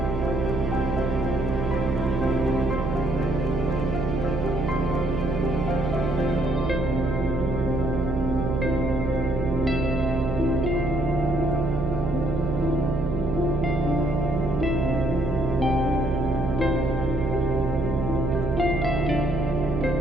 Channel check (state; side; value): noise; right; hum, 2 dB below the sound